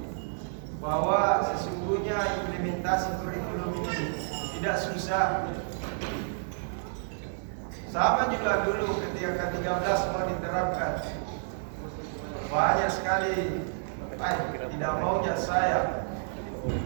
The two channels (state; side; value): silent; left; digital silence